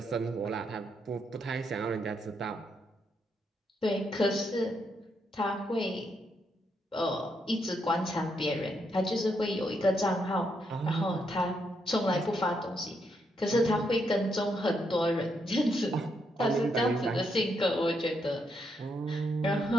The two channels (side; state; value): both; normal; correlation 0.78